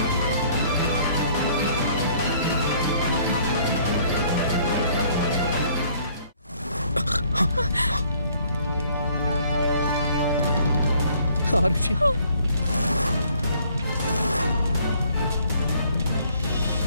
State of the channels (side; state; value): both; inverted; correlation -0.61